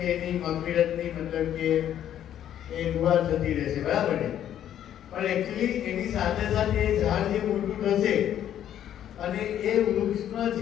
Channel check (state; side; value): quieter; right; 10.7 dB